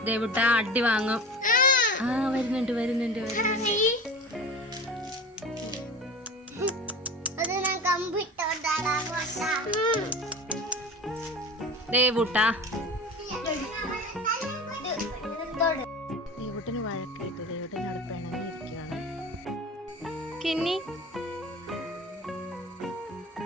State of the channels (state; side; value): normal; both; correlation 0.33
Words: ദേവുട്ട അടി വാങ്ങും. വരുന്നുണ്ട്. ദേവുട്ടന് വഴക്കായിട്ട് ദേവുട്ടനോട് പിണങ്ങിയിരിക്കുകയാണ്. കിന്നി